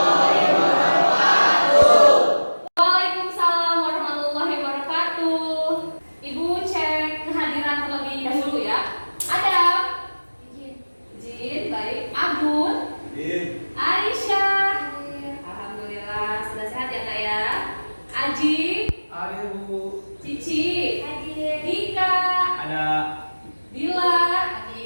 wabarakatuh. Waalaikumsalam warahmatullahi wabarakatuh. Ibu cek kehadiran terlebih dahulu ya. Adam. Izin, baik. Abun. Aisyah. Alhamdulillah sudah sehat ya Kak ya. Aji. Ada Bu. Cici. Hadir. Dika. Ada. Dila.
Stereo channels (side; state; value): both; inverted; correlation -1.00